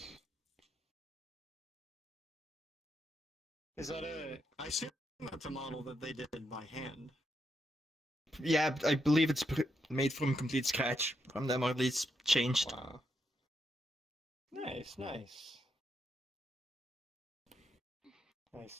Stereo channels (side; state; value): both; normal; correlation 0.81